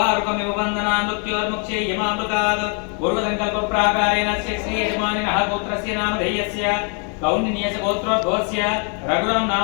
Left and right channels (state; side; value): quieter; right; 39.4 dB